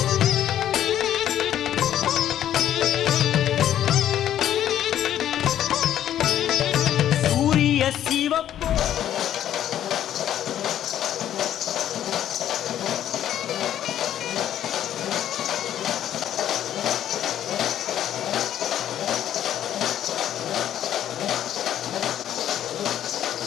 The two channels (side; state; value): right; quieter; 11.1 dB